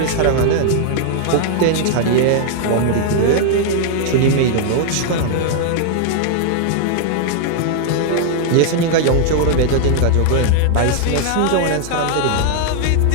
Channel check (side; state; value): both; different; correlation 0.00